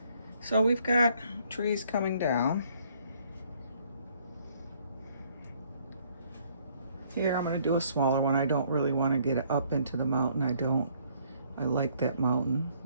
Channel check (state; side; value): inverted; both; correlation -0.65